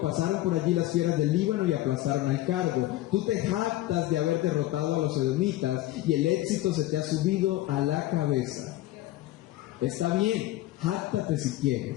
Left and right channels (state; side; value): quieter; right; 16.0 dB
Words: pasaron por allí las fieras del Líbano y aplastaron al cardo. Tú te jactas de haber derrotado a los edomitas y el éxito se te ha subido a la cabeza. Está bien, jáctate si